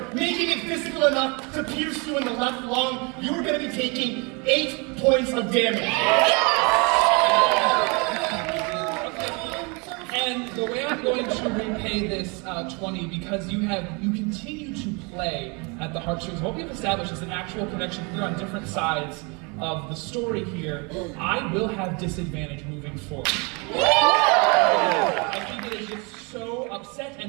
making it physical enough to pierce you in the left lung. You are going to be taking 8 points of damage. And the way I'm going to repay this 20, because you continue to play at the heartstrings. What we've established is an actual connection here on different sides of the story here. I will have disadvantage moving forward. I think it is just so upset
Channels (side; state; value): left; quieter; 31.0 dB